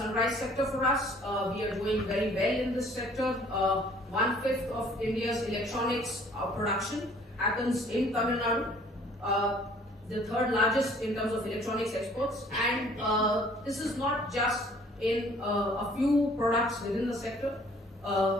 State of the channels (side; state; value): both; normal; correlation 0.56